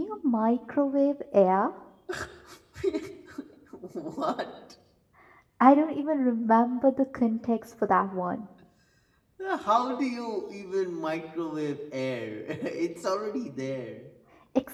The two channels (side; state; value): both; identical; correlation 1.00